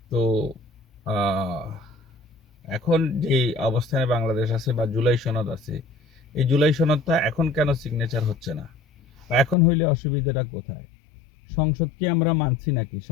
তো আহ, এখন যে অবস্থানে বাংলাদেশ আছে বা জুলাই সনদ আছে, এই জুলাই সনদটা এখন কেন সিগনেচার হচ্ছে না, বা এখন হইলে অসুবিধাটা কোথায়? সংসদকে আমরা মানছি নাকি?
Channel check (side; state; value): right; drops out; at 9.6 s